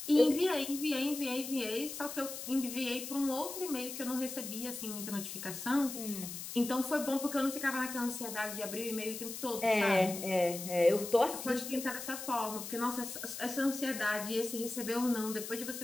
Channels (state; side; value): noise; left; hiss, 8 dB below the sound